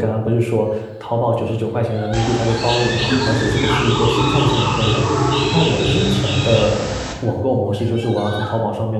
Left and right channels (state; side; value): identical; both; correlation 1.00